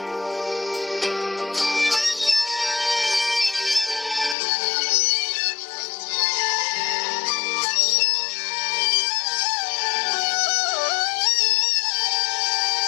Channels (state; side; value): drops out; right; at 4.4 s